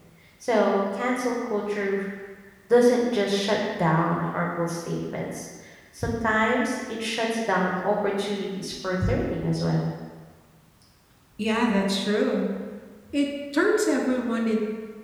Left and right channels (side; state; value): both; identical; correlation 1.00